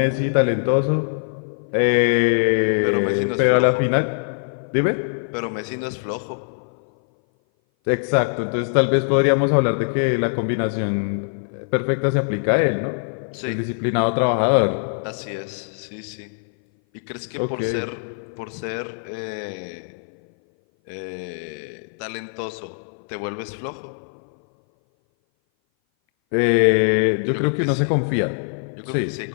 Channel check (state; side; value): silent; right; 59 dB below the other